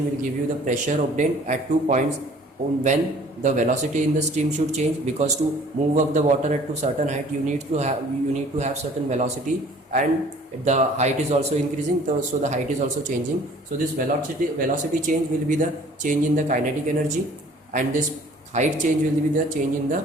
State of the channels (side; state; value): both; normal; correlation 0.52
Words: will give you the pressure obtained at 2 points when the velocity in the stream should change, because to move up the water at to certain height you need to have certain velocity, and the height is also increasing, so the height is also changing. So this velocity change will be the change in the kinetic energy, and this height change will be the change in the